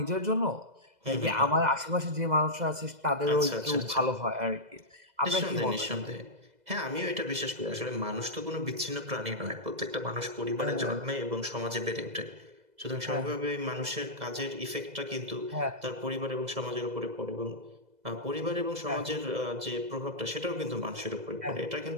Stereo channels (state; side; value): late; left; 2.0 ms